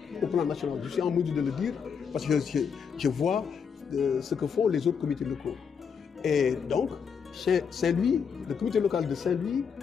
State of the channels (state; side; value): quieter; right; 6.6 dB